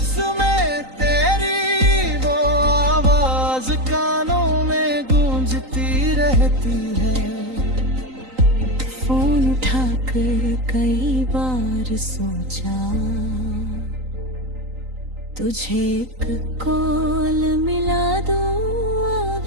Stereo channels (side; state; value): left; late; 3.9 ms